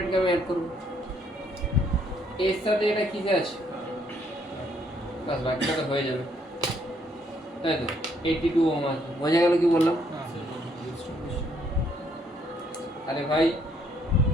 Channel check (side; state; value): both; normal; correlation 0.69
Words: কে আমি অ্যাড করবো, এর সাথে এটা কিসে আছে? বাস বাকিটা তো হয়ে যাবে, তাই তো? 82 ওহম আছে। বোঝা গেল কি বললাম? আরে ভাই